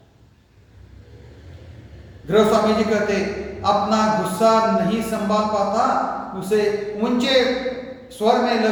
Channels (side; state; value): both; identical; correlation 1.00